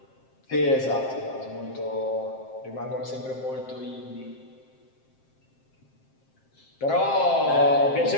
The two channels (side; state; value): right; late; 7.6 ms